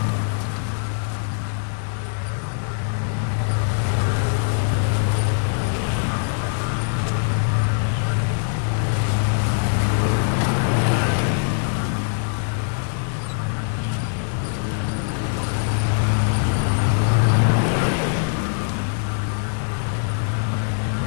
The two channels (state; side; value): silent; right; 64 dB below the other